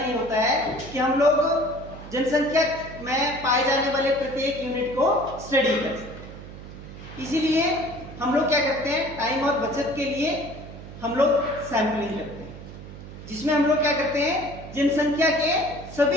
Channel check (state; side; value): noise; right; hum, 14 dB below the sound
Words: होता है कि हम लोग जनसंख्या में पाए जाने वाले प्रत्येक यूनिट को स्टडी कर सकें। इसीलिए हम लोग क्या करते हैं, टाइम और बचत के लिए हम लोग सैंपलिंग करते हैं, जिसमें हम लोग क्या करते हैं, जनसंख्या के